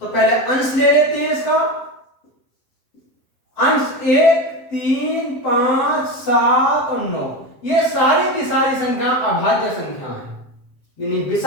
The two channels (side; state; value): right; late; 7.6 ms